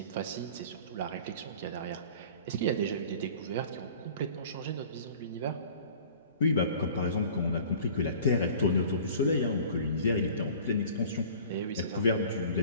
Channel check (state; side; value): inverted; both; correlation -0.45